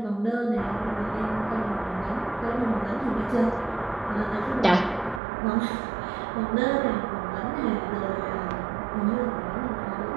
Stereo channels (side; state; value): left; drops out; at 5.2 s